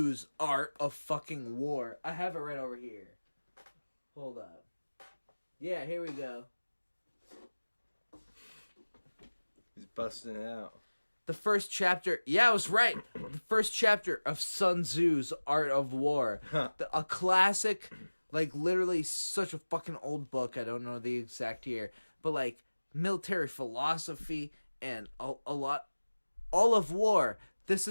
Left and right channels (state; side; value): inverted; both; correlation -1.00